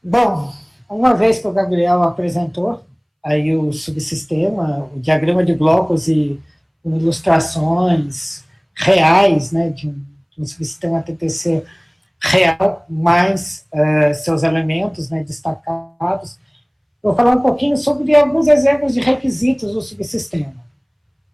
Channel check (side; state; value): both; identical; correlation 1.00